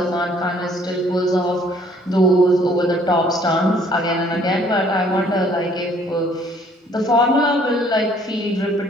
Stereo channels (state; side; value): normal; both; correlation 0.60